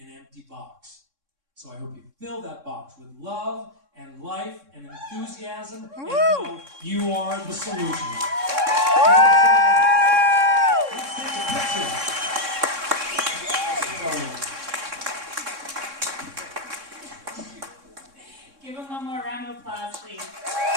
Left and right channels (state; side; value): late; left; 3.6 ms